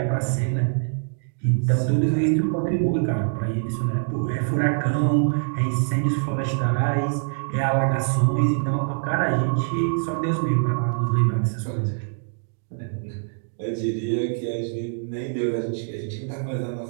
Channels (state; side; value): silent; left; digital silence